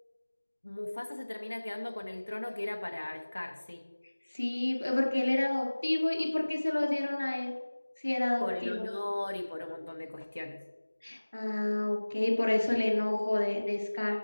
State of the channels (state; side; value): inverted; both; correlation -1.00